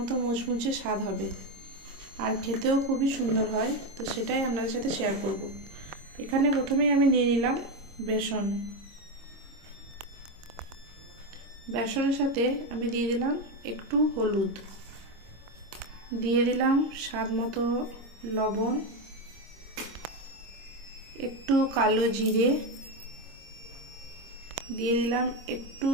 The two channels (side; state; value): left; late; 26 ms